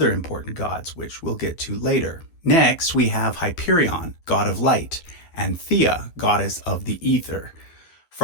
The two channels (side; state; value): right; late; 12 ms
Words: important gods, which we'll get to later. Next, we have Hyperion, god of light, and Thea, goddess of the ether.